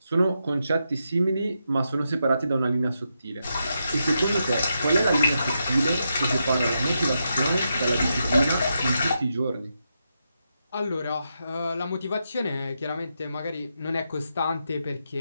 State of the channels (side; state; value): both; inverted; correlation -0.84